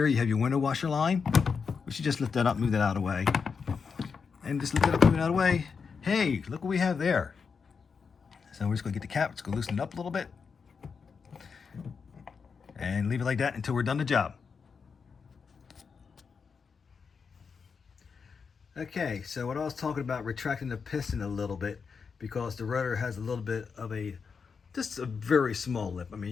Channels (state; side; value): quieter; right; 5.7 dB